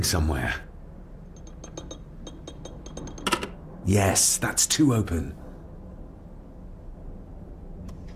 somewhere. Yes, that's too open.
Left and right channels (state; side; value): identical; both; correlation 1.00